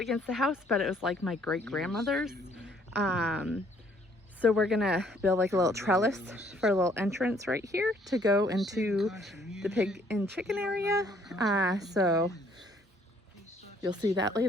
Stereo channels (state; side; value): normal; both; correlation 0.63